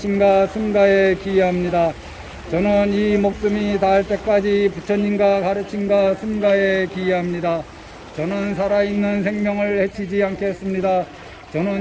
승가에 기여합니다. 저는 이 목숨이 닿을 때까지 부처님과 가르침과 승가에 기여합니다. 저는 살아있는 생명을 해치지 않겠습니다.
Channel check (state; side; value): identical; both; correlation 1.00